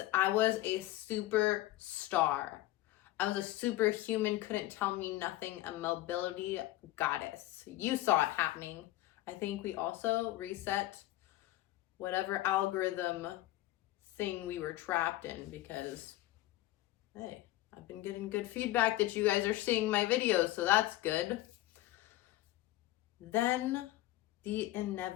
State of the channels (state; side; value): quieter; right; 16.2 dB